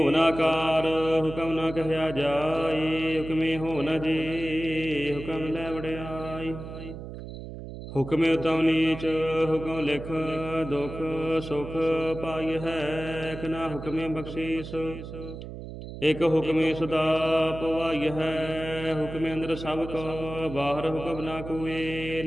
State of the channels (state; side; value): noise; right; hum, 10 dB below the sound